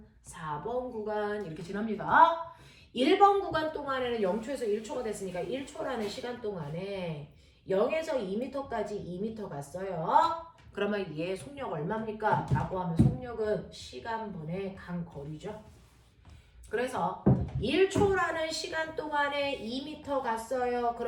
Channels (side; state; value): both; identical; correlation 1.00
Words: 4번 구간 이렇게 지납니다. 1번 구간 동안에는 0초에서 1초가 됐으니까 1초라는 시간 동안에 0에서 2m까지 2m 갔어요. 그러면 얘 속력 얼마입니까? 라고 하면 속력은 시간분의 간 거리죠. 그래서 1초라는 시간 동안에 2m 갔어요.